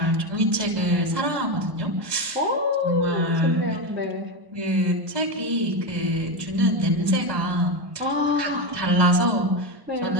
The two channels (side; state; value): left; late; 1.2 ms